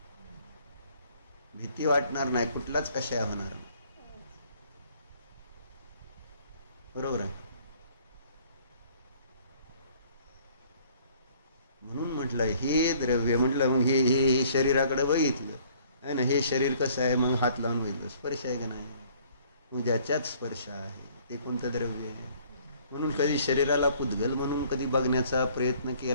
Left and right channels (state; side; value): inverted; both; correlation -0.58